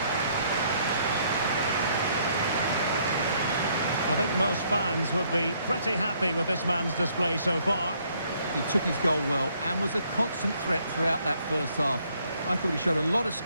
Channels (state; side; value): inverted; both; correlation -0.67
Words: I think most fans would be pretty happy with this man's display so far. He took his goal well and was a constant threat throughout that first half. I thought he showed a lot of